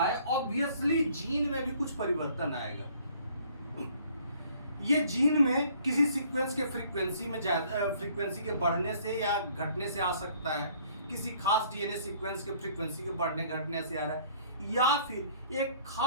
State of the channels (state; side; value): inverted; both; correlation -0.57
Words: है, ऑब्वियसली जीन में भी कुछ परिवर्तन आएगा। ये जीन में किसी सीक्वेंस के फ्रीक्वेंसी के बढ़ने से या घटने से आ सकता है, किसी खास डीएनए सीक्वेंस के फ्रीक्वेंसी के बढ़ने घटने से आ रहा है, या फिर एक